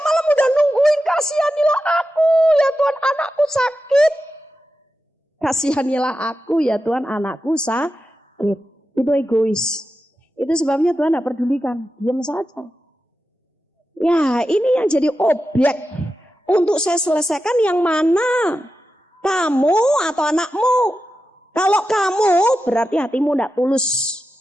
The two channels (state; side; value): normal; both; correlation 0.91